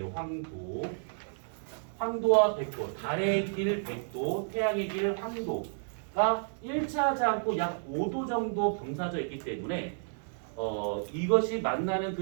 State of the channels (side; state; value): left; silent; digital silence